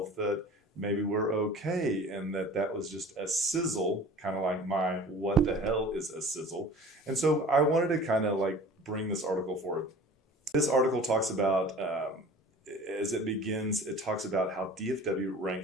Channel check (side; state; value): both; normal; correlation 0.43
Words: that maybe we're okay, and that was just a sizzle, kind of like my what the hell is a sizzle. And so I wanted to kind of like bring this article forward. This article talks about, as it begins, it talks about how DFW